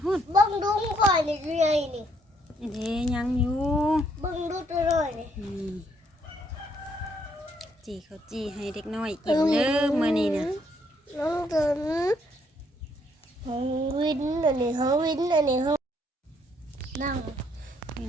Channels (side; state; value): both; normal; correlation 0.70